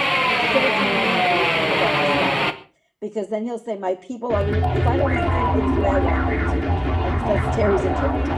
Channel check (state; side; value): identical; both; correlation 1.00